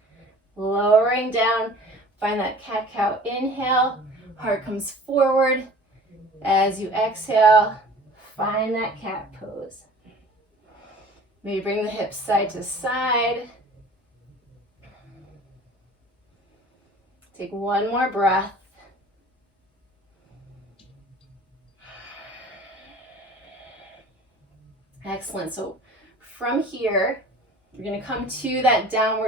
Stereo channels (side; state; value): both; normal; correlation 0.45